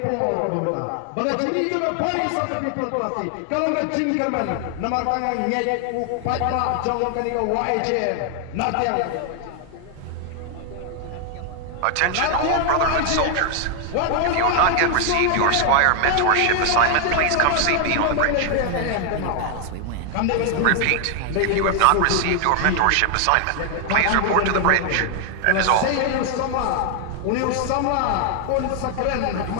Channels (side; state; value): both; different; correlation 0.00